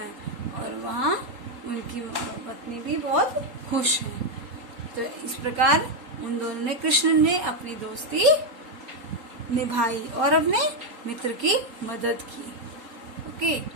और वहाँ उनकी पत्नी भी बहुत खुश है। तो इस प्रकार उन दोनों ने, कृष्ण ने अपनी दोस्ती निभाई और अपने मित्र की मदद की। ओके,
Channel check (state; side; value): late; left; 3.8 ms